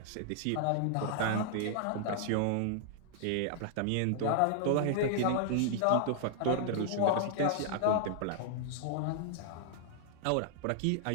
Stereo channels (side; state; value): both; different; correlation -0.01